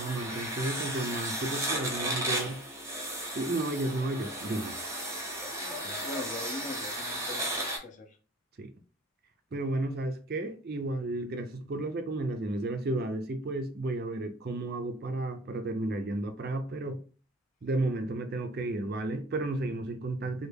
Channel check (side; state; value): both; normal; correlation 0.45